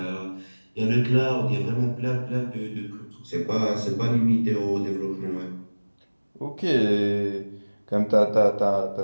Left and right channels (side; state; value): both; inverted; correlation -1.00